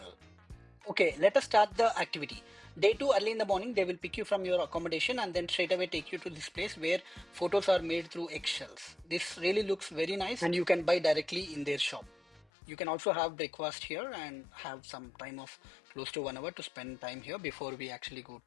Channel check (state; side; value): drops out; right; at 12.5 s